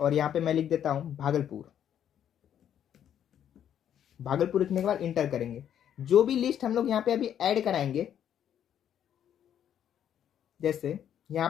यहाँ पे मैं लिख देता हूँ भागलपुर। भागलपुर लिखने के बाद इंटर करेंगे। जो भी लिस्ट हम लोग यहाँ पे अभी ऐड कराएंगे, जैसे यहाँ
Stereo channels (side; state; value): right; quieter; 9.7 dB